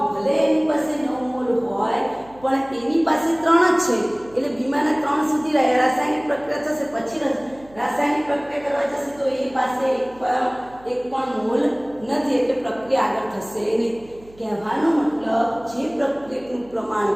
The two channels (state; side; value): noise; right; hum, 24 dB below the sound